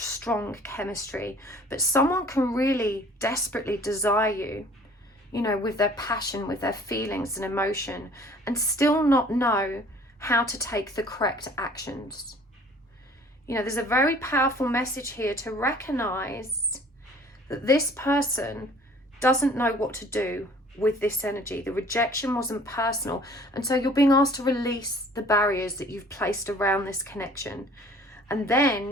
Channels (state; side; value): normal; both; correlation 0.52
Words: chemistry, but someone can really desperately desire you, you know, with their passion, with their feelings and emotion, and still not know how to take the correct actions. You know, there's a very powerful message here to recognize that this person doesn't know what to do with this energy. The rejection wasn't personal, and so you're being asked to release the barriers that you've placed around this connection, and